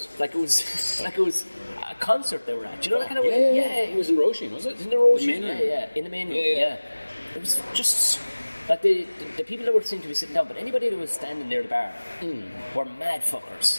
Like it was a concert they were at. Do you know that kind of way? way? Yeah. It was in Roisin, was it? In the Roisin. In the main room. Yeah. It was just like the people that were seemed to be sitting down, but anybody that was standing near the bar were mad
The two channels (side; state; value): both; inverted; correlation -1.00